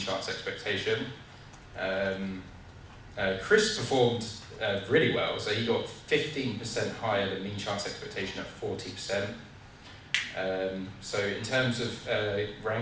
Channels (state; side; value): identical; both; correlation 1.00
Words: expectation. Chris performed really well, so he got 15% higher than mean chance expectation at 40%. So in terms of